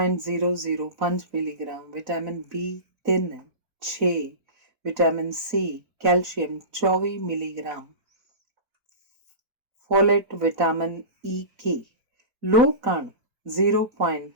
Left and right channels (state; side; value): late; left; 4.0 ms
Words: milligram, vitamin B3 6, vitamin C, calcium 24 milligram, folate, vitamin E, ਲੋਹ ਕਣ